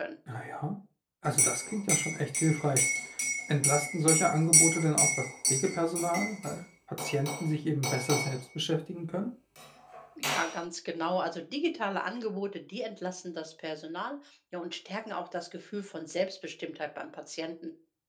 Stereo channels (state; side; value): identical; both; correlation 1.00